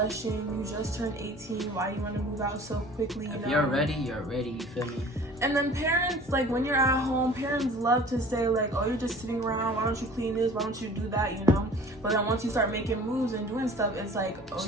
You just turned 18. Why do you want to move out so quickly? If you're ready, you're ready. You feel me? And then parents, like when you're at home, parents love to say like, oh, you're just sitting around. Why don't you clean this? Why don't you do that? You know? But then once you start making moves and doing stuff, it's like, oh,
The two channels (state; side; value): normal; both; correlation 0.46